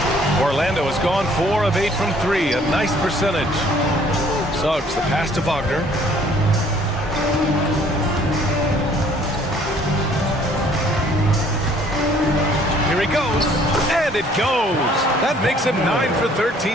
Orlando has gone 4 of 8 from 3. A nice percentage. Suggs, the pass to Wagner. Here he goes, and it goes. That makes him 9 for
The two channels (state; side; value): normal; both; correlation 0.59